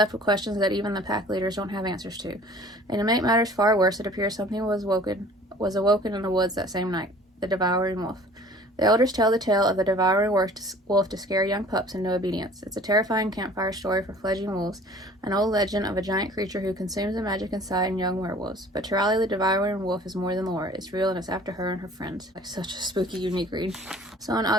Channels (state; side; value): normal; both; correlation 0.49